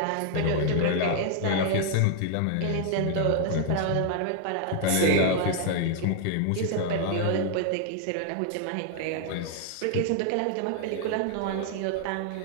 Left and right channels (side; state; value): both; different; correlation 0.00